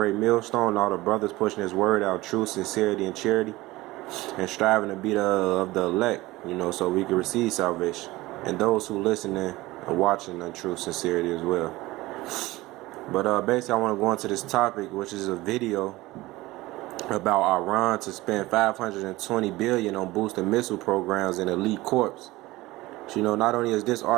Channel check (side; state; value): left; quieter; 19.2 dB